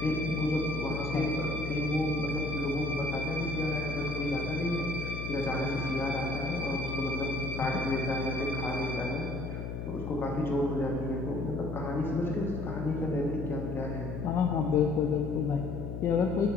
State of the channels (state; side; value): noise; left; hum, 5 dB below the sound